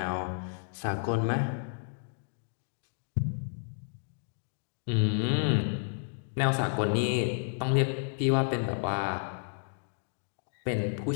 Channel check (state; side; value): silent; right; digital silence